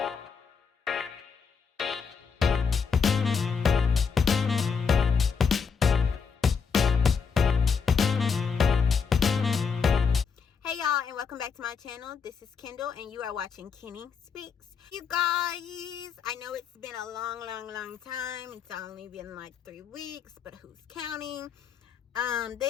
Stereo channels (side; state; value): right; quieter; 5.9 dB